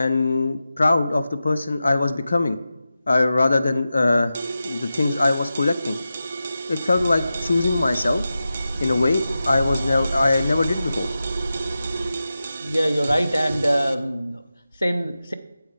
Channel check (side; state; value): both; inverted; correlation -0.93